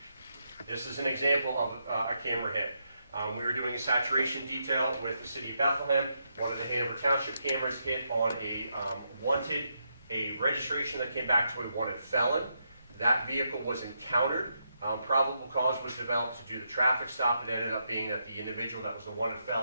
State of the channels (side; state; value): both; inverted; correlation -0.81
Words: This is an example of a camera hit. We were doing a saturation detail with the city of Bethlehem. One of the Hanover Township cameras hit on a registration that came back to a wanted felon. That vehicle was encountered. Probable cause was developed to do the traffic stop. It ended up being that the individual that was the wanted